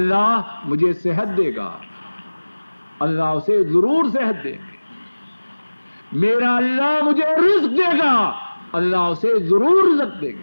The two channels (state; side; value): inverted; both; correlation -1.00